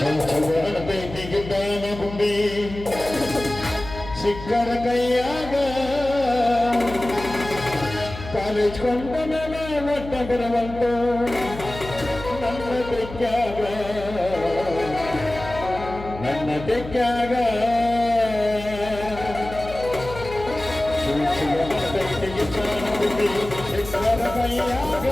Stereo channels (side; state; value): left; noise; hum, 12 dB below the sound